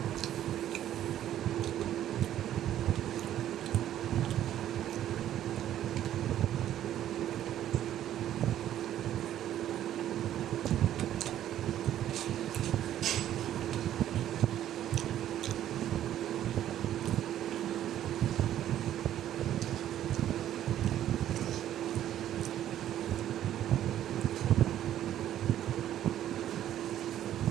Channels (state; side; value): quieter; left; 11.7 dB